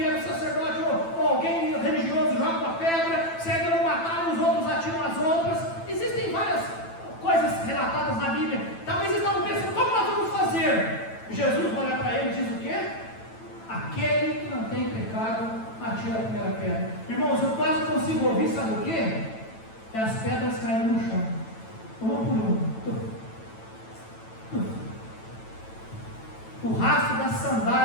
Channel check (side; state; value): right; late; 9.0 ms